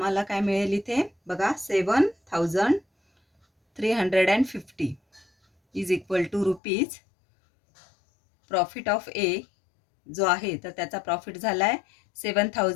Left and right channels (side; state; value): right; drops out; at 6.6 s